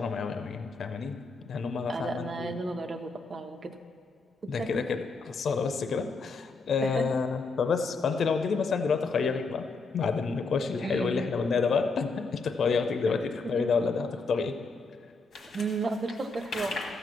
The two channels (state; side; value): quieter; right; 3.8 dB